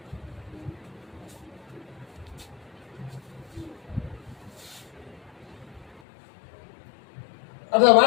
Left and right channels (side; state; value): right; drops out; at 6.0 s